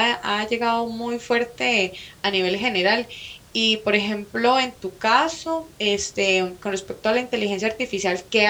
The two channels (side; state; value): both; identical; correlation 1.00